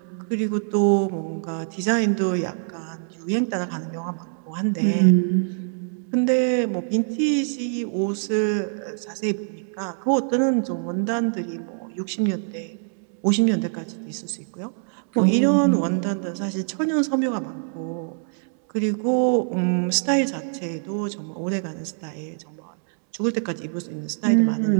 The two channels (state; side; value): silent; left; 62 dB below the other